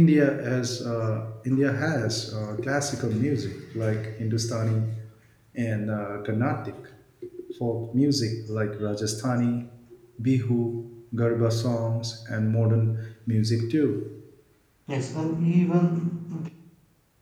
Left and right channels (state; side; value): identical; both; correlation 1.00